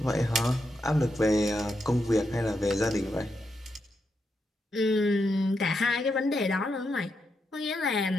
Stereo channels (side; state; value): both; normal; correlation 0.83